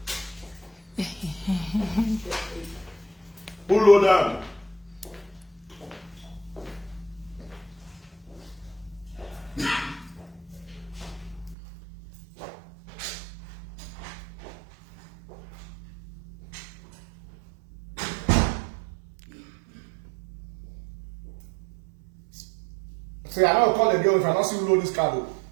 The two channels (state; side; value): drops out; left; at 11.6 s